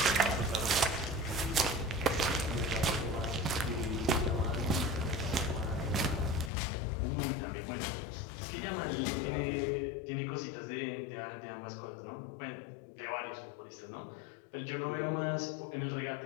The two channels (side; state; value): right; drops out; at 6.5 s